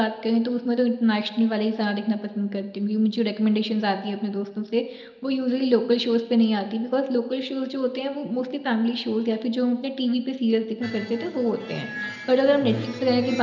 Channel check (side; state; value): both; identical; correlation 1.00